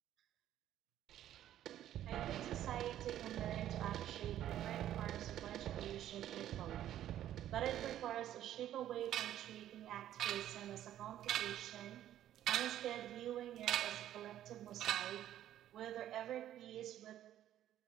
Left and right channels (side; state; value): left; quieter; 12.0 dB